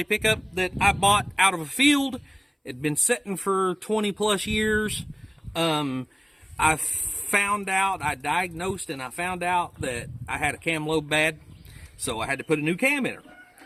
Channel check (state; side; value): identical; both; correlation 1.00